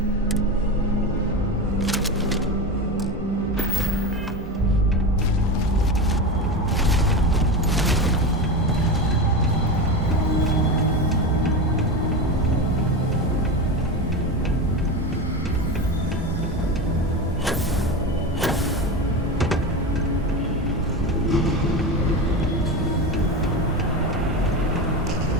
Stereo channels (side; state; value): both; normal; correlation 0.22